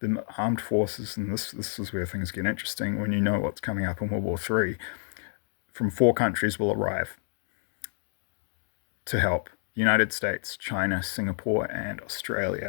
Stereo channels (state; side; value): silent; right; digital silence